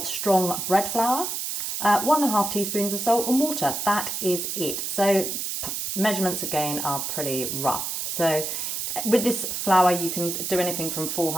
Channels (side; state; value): right; noise; hiss, 3 dB below the sound